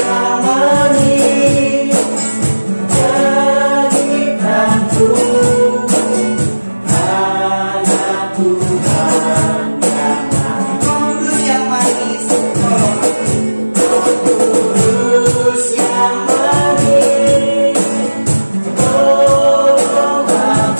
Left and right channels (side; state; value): both; inverted; correlation -1.00